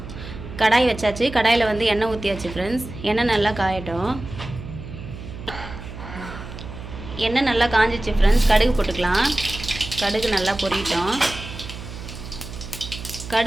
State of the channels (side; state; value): right; noise; hum, 11 dB below the sound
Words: கடாய் வச்சாச்சு. கடாயில் வந்து எண்ணெய் ஊற்றியாச்சு ஃப்ரெண்ட்ஸ். எண்ணெய் நல்லா காயட்டும். எண்ணெய் நல்லா காஞ்சிச்சு ஃப்ரெண்ட்ஸ். கடுகு போட்டுக்கலாம். கடுகு நல்லா பொரியட்டும்.